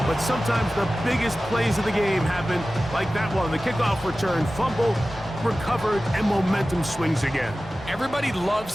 but sometimes the biggest plays of the game happen like that one. The kickoff return, fumble, recovered, and momentum swings again. Everybody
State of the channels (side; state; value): both; normal; correlation 0.96